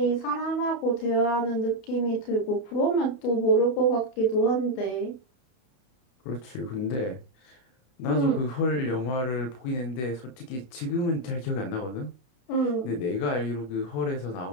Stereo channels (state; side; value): late; right; 31 ms